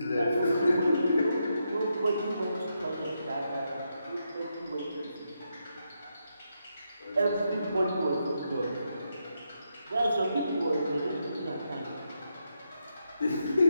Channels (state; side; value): inverted; both; correlation -0.82